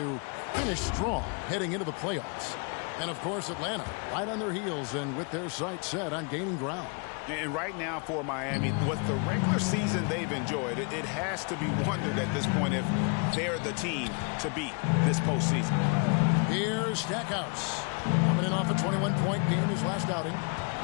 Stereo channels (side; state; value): right; quieter; 35.6 dB